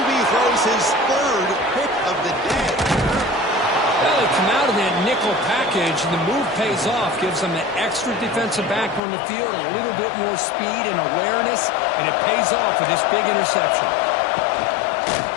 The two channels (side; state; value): right; drops out; at 9.0 s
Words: throws his 3rd pick of the day. Well, they come out of that nickel package, and the move pays off, gives them an extra defensive back on the field, a little bit more speed and awareness, and it pays off with this big interception.